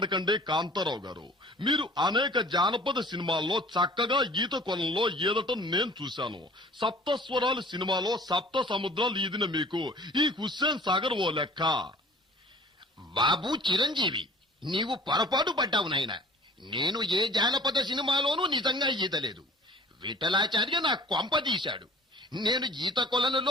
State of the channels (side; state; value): both; normal; correlation 0.47